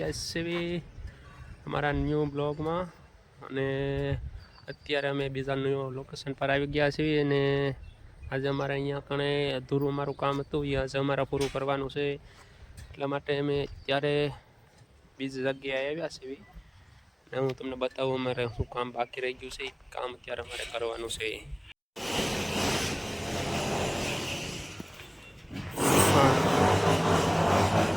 છીએ અમારા ન્યૂ બ્લોગમાં અને અત્યારે અમે બીજા ન્યૂ લોકેશન પર આવી ગયા છીએ અને આજે અમારે અહીંયા કણે અધૂરું અમારું કામ હતું એ આજે અમારે પૂરું કરવાનું છે. એટલા માટે અમે ત્યારે બીજી જગ્યાએ આવ્યા છીએ અને હું તમને બતાવું અમારે શું કામ બાકી રહી ગયું છે. કામ અત્યારે અમારે કરવાનું છે.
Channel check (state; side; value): identical; both; correlation 1.00